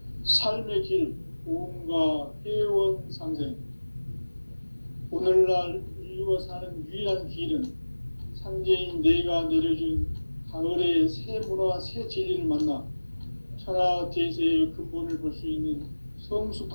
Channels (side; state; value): both; inverted; correlation -1.00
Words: 삶의 길, 보험과 회원 상생. 오늘날 인류가 사는 유일한 길은 상제인 내가 내려준 가을의 새 문화, 새 진리를 만나 천하 대세의 근본을 볼 수 있는